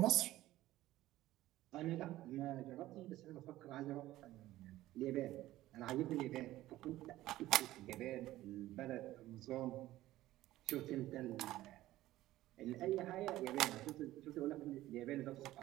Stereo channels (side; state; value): left; quieter; 15.6 dB